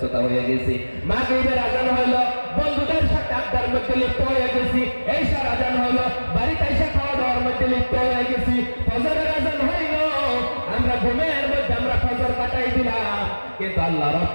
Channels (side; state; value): both; inverted; correlation -1.00